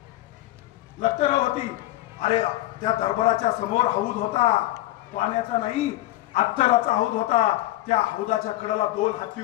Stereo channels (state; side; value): quieter; right; 16.2 dB